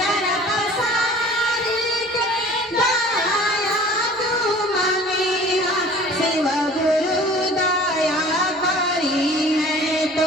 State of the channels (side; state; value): both; normal; correlation 0.46